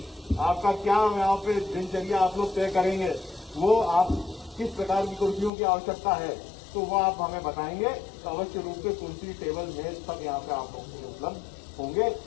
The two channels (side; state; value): right; drops out; at 5.5 s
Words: आपका क्या यहाँ पे दिनचर्या आप लोग तय करेंगे, वो आप किस प्रकार की कुर्सियों की आवश्यकता है तो वो आप हमें बताएंगे तो अवश्य रूप से कुर्सी टेबल मेज सब यहाँ पे आप लोग उपलब्ध होंगे।